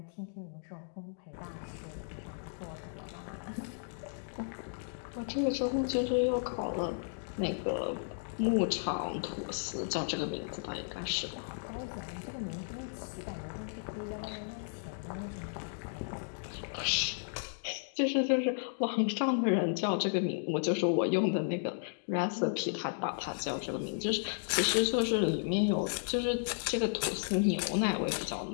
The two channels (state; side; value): silent; right; digital silence